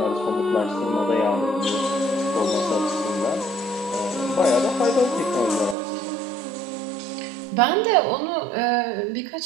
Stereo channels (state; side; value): drops out; left; at 5.8 s